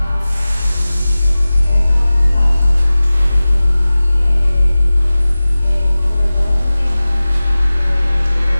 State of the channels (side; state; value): both; inverted; correlation -0.97